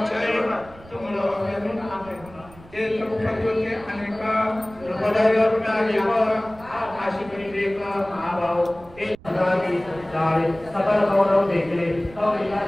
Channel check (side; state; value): right; noise; rumble, 21 dB below the sound